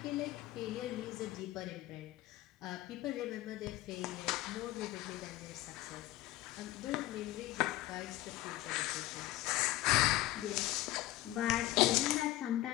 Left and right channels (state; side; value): quieter; right; 16.1 dB